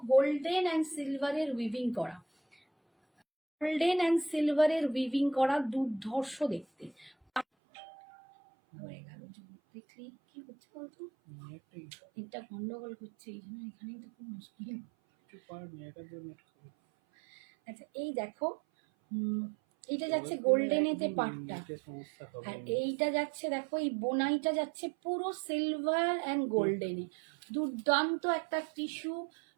গোল্ডেন অ্যান্ড সিলভারের উইভিং করা, গোল্ডেন অ্যান্ড সিলভারের উইভিং করা, দুর্ধর্ষ দেখতে। হয়ে গেল দেখলি কি করছে বলতো, এটা গন্ডগোল করছে এই জন্য এখানেই তো খুব মুশকিল। আচ্ছা এই দেখো এইটা যাচ্ছে গোল্ডেনেতে পাটটা, আর এইটা যাচ্ছে দেখো এই বোনাইটা যাচ্ছে পুরো সিলভার অ্যান্ড গোল্ডেনে। দুর্দান্ত একটা টিস্যু,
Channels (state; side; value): drops out; left; at 7.5 s